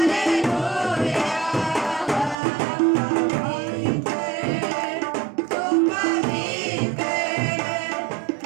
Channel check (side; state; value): left; drops out; at 2.4 s